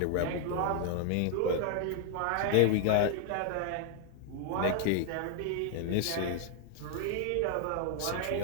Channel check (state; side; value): different; both; correlation 0.00